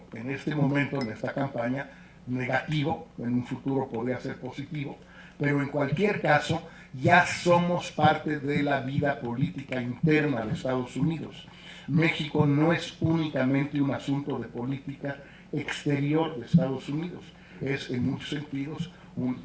en este momento, en esta campaña, negativo, en un futuro podría ser positivo, pero en cualquier caso ya somos parte de la vida política interna de Estados Unidos. México no es únicamente un asunto de política exterior de Estados Unidos, es en muchos sentidos un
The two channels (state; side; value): identical; both; correlation 1.00